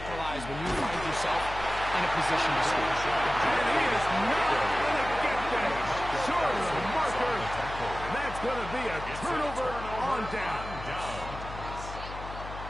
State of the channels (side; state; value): left; noise; hum, 11 dB below the sound